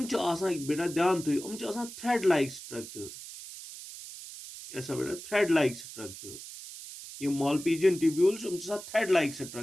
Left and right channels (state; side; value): noise; right; hiss, 13 dB below the sound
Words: बेटा ध्यान थो थ्रेड लाइक स्ट्रक्चर ऐसा बेटा थ्रेड लाइक स्ट्रक्चर ये Malpighian tubules thread like